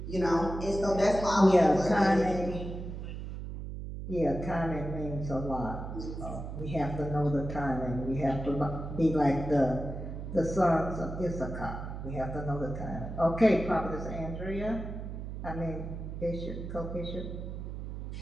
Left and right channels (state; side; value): noise; right; hum, 7 dB below the sound